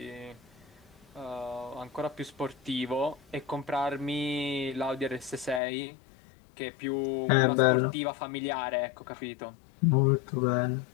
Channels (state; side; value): drops out; right; at 5.6 s